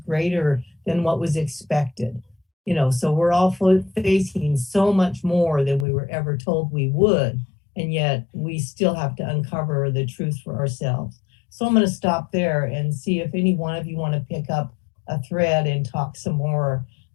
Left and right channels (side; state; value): right; drops out; at 5.9 s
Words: than what was expected. You know, so we're all facing so much more than we were ever told we would, and yet we still have to uncover the truth for ourselves. So I'm going to stop there and see if any one of you want to pick up a thread and talk some more